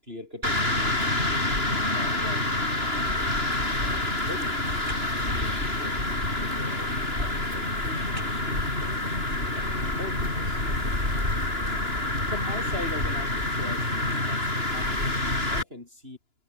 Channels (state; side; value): late; left; 2.9 ms